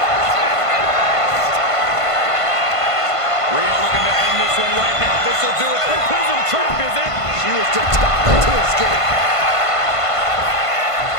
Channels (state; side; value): late; right; 1.5 ms